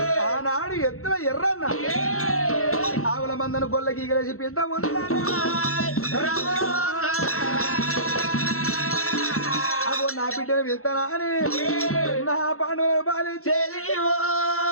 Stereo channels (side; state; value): right; late; 0.63 ms